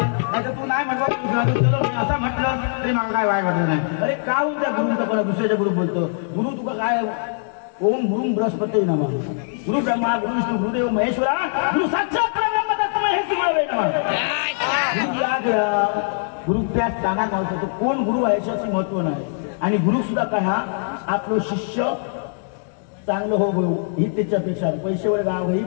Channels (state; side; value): silent; right; digital silence